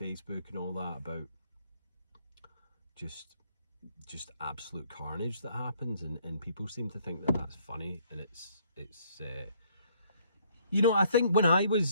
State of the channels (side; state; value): both; inverted; correlation -0.65